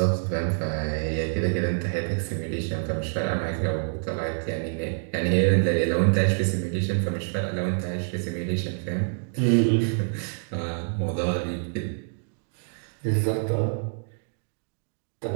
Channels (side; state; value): left; silent; digital silence